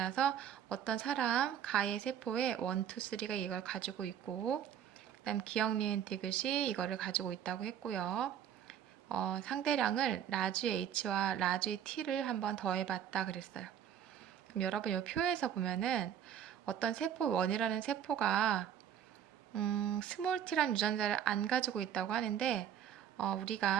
어떤 사람 가의 세포에 1, 2, 3가 이걸 가지고 있고 그 다음 기억, 니은, 디귿이 이거를 가지고 있다고 했고요. 상대량을 라지 H와 라지 T를 한번 더해봤다 그랬어요. 그럼 여러분 이 표에서 보면은 어떤 세포 1이라는 세포가 스몰 t라는 유전자를 안 가지고 있다고 하는데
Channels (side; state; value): left; quieter; 9.5 dB